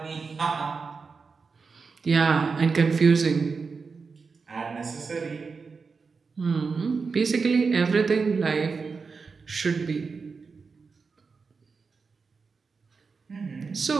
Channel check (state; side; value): quieter; left; 4.9 dB